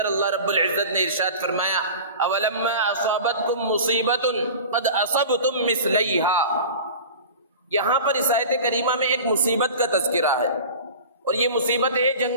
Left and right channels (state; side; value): inverted; both; correlation -0.36